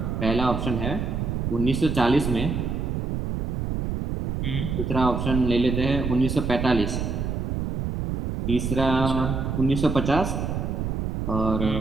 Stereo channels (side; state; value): right; noise; rumble, 2 dB below the sound